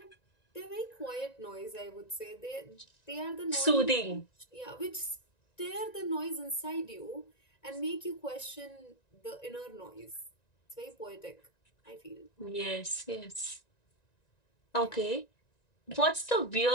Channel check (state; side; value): late; right; 1.9 ms